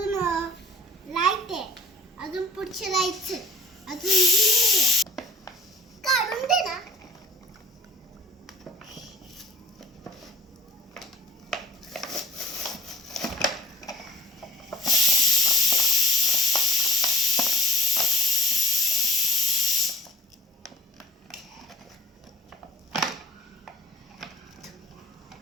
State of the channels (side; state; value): both; normal; correlation 0.47